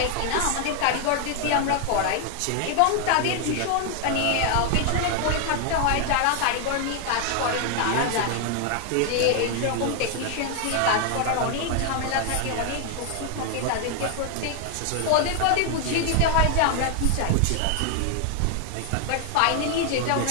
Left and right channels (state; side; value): different; both; correlation 0.00